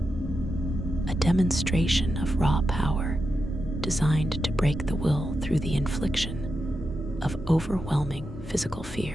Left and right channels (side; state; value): both; normal; correlation 0.88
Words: a demonstration of raw power designed to break the will through the infliction of overwhelming physical